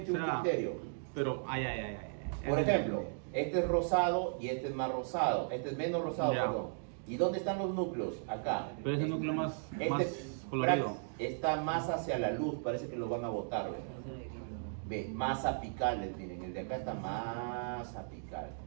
un será- criterio. Pero, ay. Por ejemplo, este es rosado y este es más rosado. Este es menos rosado, Ya. perdón. ¿Y dónde están los núcleos? Acá. Pero ese núcleo más Este colorido. está más hacia la luz, parece que lo van a botar, ¿ves? Ve, más apicales, miren, el de acá está más apical.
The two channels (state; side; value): silent; left; digital silence